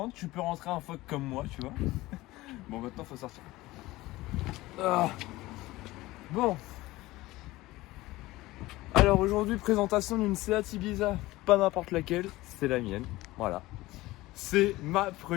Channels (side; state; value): right; quieter; 18.6 dB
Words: tu peux rentrer un phoque comme moi, tu vois. Bon, maintenant faut sortir. Ah. Bon. Alors aujourd'hui, présentation d'une Seat Ibiza, pas n'importe laquelle, c'est la mienne, voilà. C'est ma